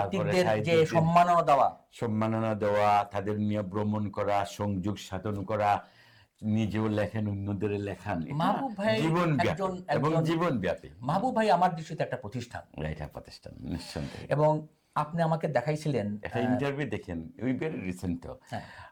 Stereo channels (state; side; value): identical; both; correlation 1.00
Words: যে সম্মাননা দেওয়া, তাদের নিয়ে ভ্রমণ করা, সংযোগ সাধন করা, নিজেও লেখেন, অন্যদের লেখান, জীবনব্যাপী এবং জীবনব্যাপী। মাহবুব ভাই আমার দৃষ্টিতে একটা প্রতিষ্ঠান, এটা প্রতিষ্ঠান নিঃসন্দেহে। এবং আপনি আমাকে দেখাইছিলেন একটা ইন্টারভিউ, দেখেন ওই ভেরি রিসেন্ট,